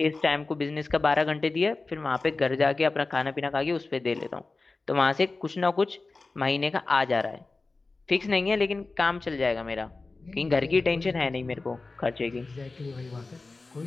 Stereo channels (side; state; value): right; quieter; 3.6 dB